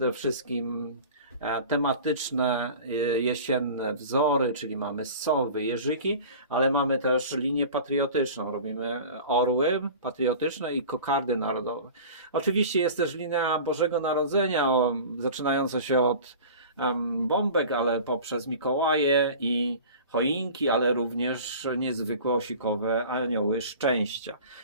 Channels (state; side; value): inverted; both; correlation -0.39